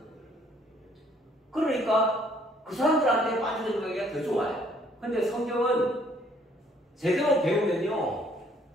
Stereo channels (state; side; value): normal; both; correlation 0.63